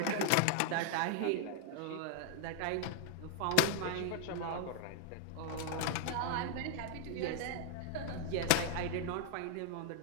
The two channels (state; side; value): different; both; correlation 0.00